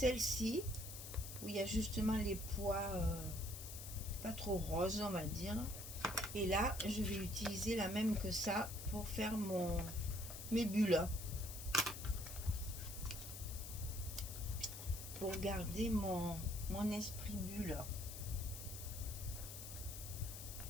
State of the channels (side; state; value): left; noise; hiss, 9 dB below the sound